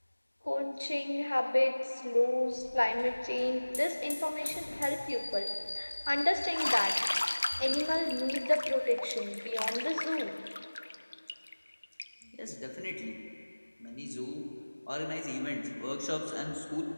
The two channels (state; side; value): inverted; both; correlation -1.00